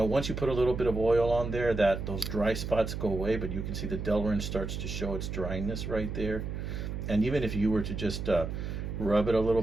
once you put a little bit of oil on there, those dry spots go away, but you can see the Delrin starts to show its dryness right there. And even if you were to just rub it a little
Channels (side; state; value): right; noise; hum, 5 dB below the sound